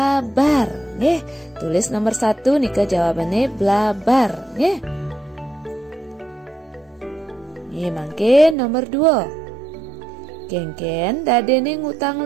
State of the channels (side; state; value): left; drops out; at 8.6 s